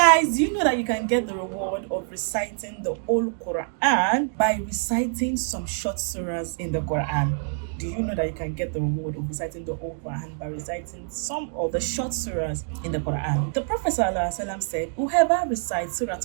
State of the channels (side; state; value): left; silent; 61 dB below the other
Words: Guys, do you know that you can get the reward of reciting the whole Quran by reciting some short surahs in the Quran? Do you know that you can get the reward of reciting the whole Quran by reciting some of the short surahs in the Quran? The Prophet ﷺ said, whoever recites Surah